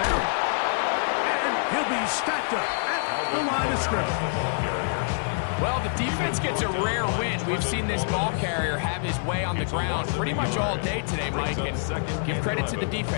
And he'll be stacked up at the line of scrimmage. Well, the defense gets a rare win. We've seen this ball carrier have his way on the ground pretty much all day today, Mike, and give credit to the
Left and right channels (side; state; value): right; silent; 59 dB below the other